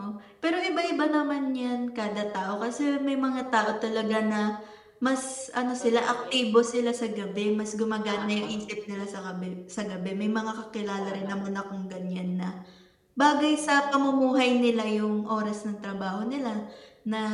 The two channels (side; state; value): both; identical; correlation 1.00